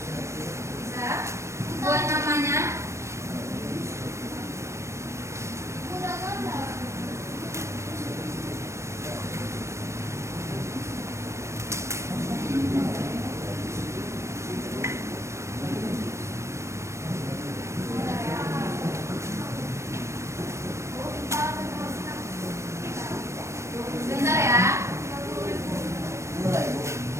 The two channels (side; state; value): left; late; 0.14 ms